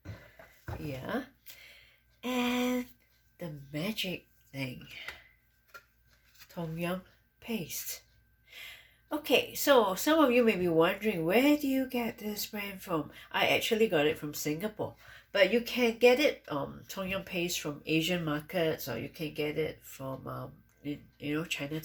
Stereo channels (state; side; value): identical; both; correlation 1.00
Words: Yeah. And the magic thing, Tom Yum paste. Okay, so some of you may be wondering, where do you get this brand from? I actually got it from Singapore, but you can get it Tom Yum paste from Asian markets, or you can get it from